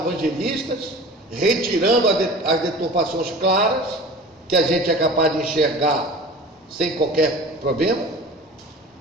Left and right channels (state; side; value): normal; both; correlation 0.39